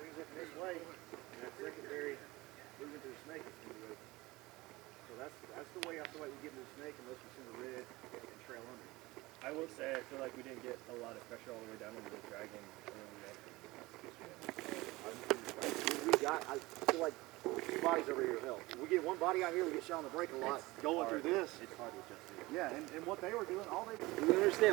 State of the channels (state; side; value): quieter; left; 20.8 dB